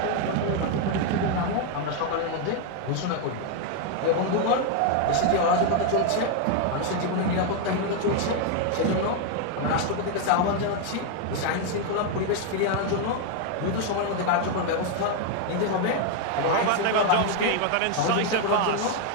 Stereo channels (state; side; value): different; both; correlation 0.01